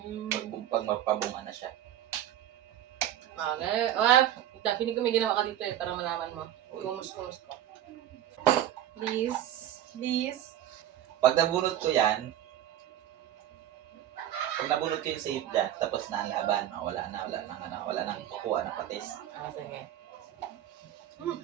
Pag Mm. magpabunga na siya. Okay. Pinig ko may ginawa ka dito para malaman mo. Kumus ko. Please. Please. Pag nabunot ko yan, pag nabunot ko yung save dyan, tapos na ang laban, wala nang kukuha ng patis. Sige.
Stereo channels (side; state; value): left; quieter; 11.6 dB